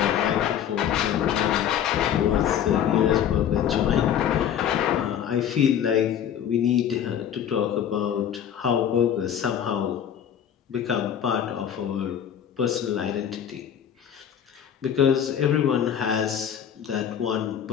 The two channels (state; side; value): quieter; right; 9.2 dB